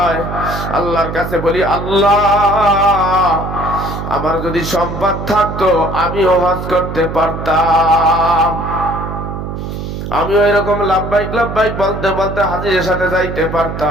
আল্লাহর কাছে বলি, আল্লাহ আমার যদি সম্পদ থাকতো আমিও হজ করতে পারতাম, আমিও এরকম লাব্বাইক লাব্বাইক বলতে বলতে হাজিরের সাথে যাইতে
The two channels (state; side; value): noise; right; hum, 6 dB below the sound